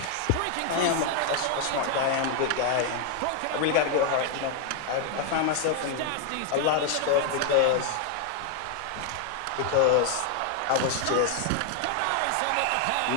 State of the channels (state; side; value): different; both; correlation 0.00